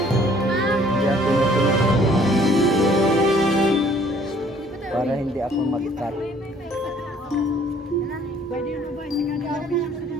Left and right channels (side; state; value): both; normal; correlation 0.58